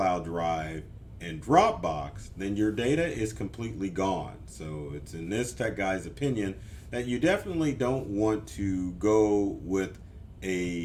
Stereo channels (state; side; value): identical; both; correlation 1.00